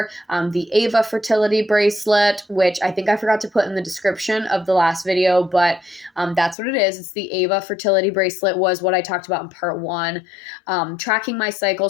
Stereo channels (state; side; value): drops out; right; at 6.6 s